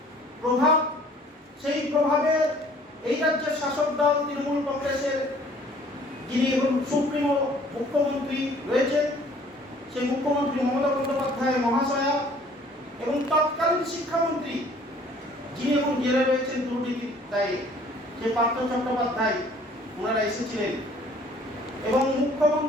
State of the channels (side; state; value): both; normal; correlation 0.55